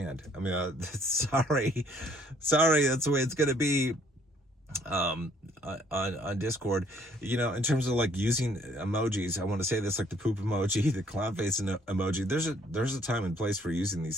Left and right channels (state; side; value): normal; both; correlation 0.63